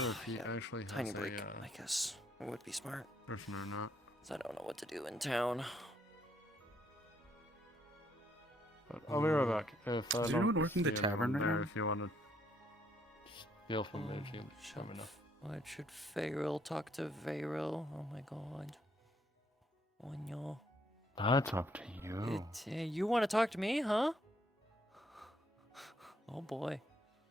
if he actually has tiny a break. I guess it would be smart. person or not. 'Cause I don't know what to do in town. But I'll be right back. If I Is don't anyone working the see tavern anyone right there, now? if you want to steal from me, if you let me know. What should Fayril talk to Fayril? Oh my god. Oh no. That's up to you. You want to talk to me, huh? Oh boy.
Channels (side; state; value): both; normal; correlation 0.70